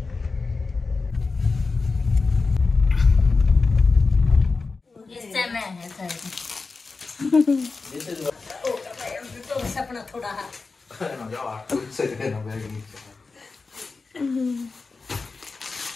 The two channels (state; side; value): quieter; right; 4.1 dB